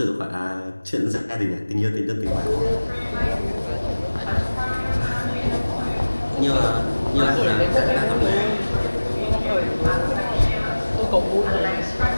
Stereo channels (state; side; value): inverted; both; correlation -1.00